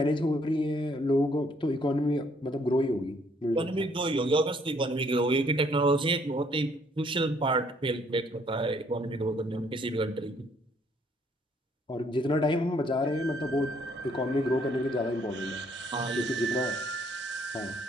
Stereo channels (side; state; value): both; normal; correlation 0.66